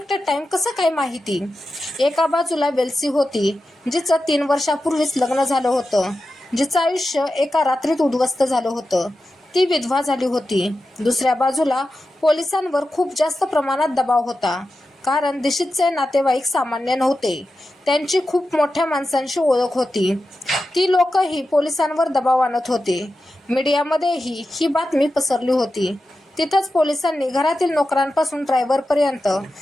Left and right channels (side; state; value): both; normal; correlation 0.91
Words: टाईम कसं काय माहिती? एका बाजूला वेल्सी होती, जिचं 3 वर्षापूर्वीच लग्न झालं होतं, जिचं आयुष्य एका रात्रीत उद्ध्वस्त झालं होतं. ती विधवा झाली होती. दुसऱ्या बाजूला पोलिसांवर खूप जास्त प्रमाणात दबाव होता, कारण दिशीतचे नातेवाईक सामान्य नव्हते. त्यांची खूप मोठ्या माणसांशी ओळख होती. ती लोकही पोलिसांवर दबाव आणत होते. मीडियामध्येही ही बातमी पसरली होती. तिथंच पोलिसांनी घरातील नोकरांपासून ड्रायव्हरपर्यंत,